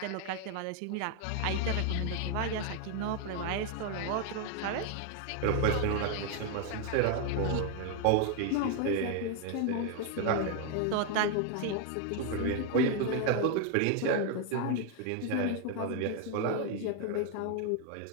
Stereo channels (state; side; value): different; both; correlation 0.00